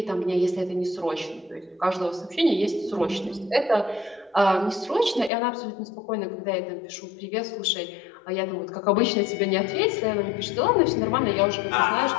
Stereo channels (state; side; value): drops out; right; at 5.3 s